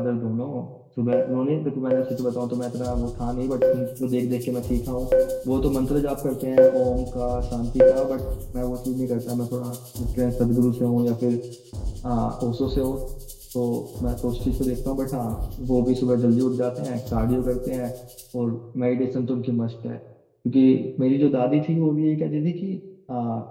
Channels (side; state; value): both; identical; correlation 1.00